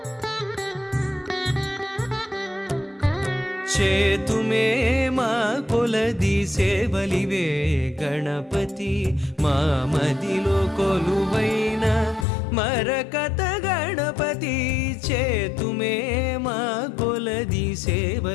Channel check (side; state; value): right; drops out; at 12.2 s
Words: చేతుమే మా కొలది సేవలివే గణపతి మా మదిలో కొలువైన మరకత గణపతి చేతుమే మా కొలది